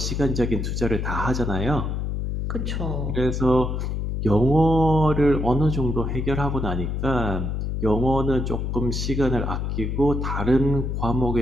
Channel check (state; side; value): noise; left; hum, 2 dB below the sound